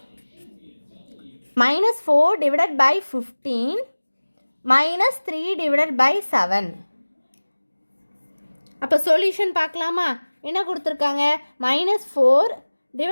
minus 4 divided by 15 minus 3 divided by 7. அப்போ சொல்யூஷன் பார்க்கலாமா? என்ன கொடுத்துருக்காங்க? minus 4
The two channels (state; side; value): inverted; both; correlation -1.00